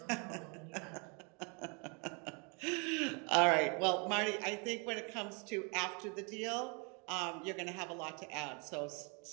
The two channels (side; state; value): left; quieter; 33.7 dB